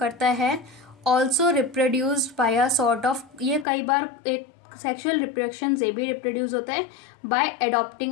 है। Also reproduced by a sort of, ये कई बार एक सेक्सुअल रिप्रोडक्शन से भी रिप्रोड्यूस होता है by adopting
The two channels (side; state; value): right; drops out; at 3.7 s